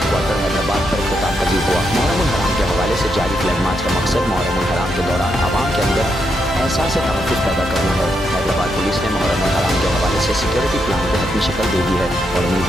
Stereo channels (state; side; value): normal; both; correlation 0.81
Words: हैदराबाद पर इख्तिताम पजीर हुआ। मुहर्रम उल हराम के हवाले से जारी फ्लैग मार्च का मकसद मुहर्रम उल हराम के दौरान आवाम के अंदर एहसास तहफ़्फ़ुज़ पैदा करना है। हैदराबाद पुलिस ने मुहर्रम उल हराम के हवाले से सिक्योरिटी प्लान को अपनी शक्ल दे दी है और